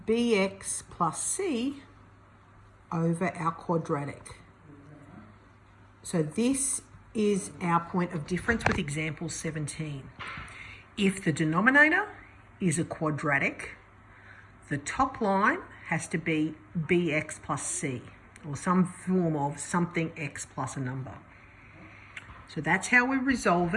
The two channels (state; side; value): identical; both; correlation 1.00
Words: bx plus c over our quadratic. So this is our point of difference with example 17. If the denominator is a quadratic, the top line has to be bx plus c, or some form of something x plus a number. So that's how we resolve